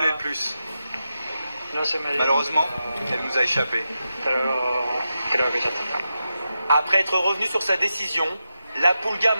le plus. Malheureusement, elle nous a échappé. Après être revenu sur sa décision, la Pulga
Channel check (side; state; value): both; inverted; correlation -0.89